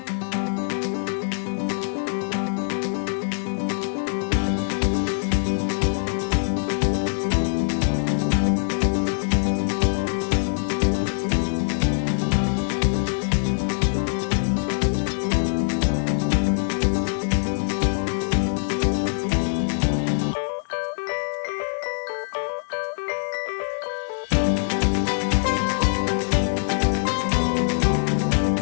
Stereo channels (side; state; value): right; silent; digital silence